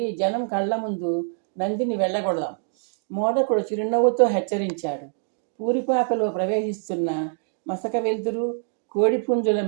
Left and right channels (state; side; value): silent; left; 62 dB below the other